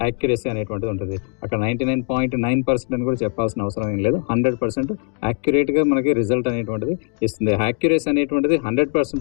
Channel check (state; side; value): quieter; right; 36.8 dB